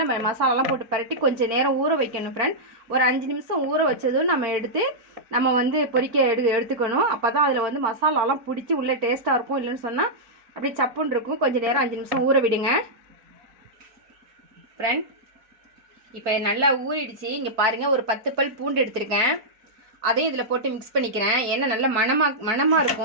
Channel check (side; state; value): left; late; 4.4 ms